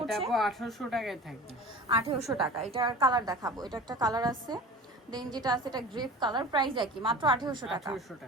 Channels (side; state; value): both; normal; correlation 0.37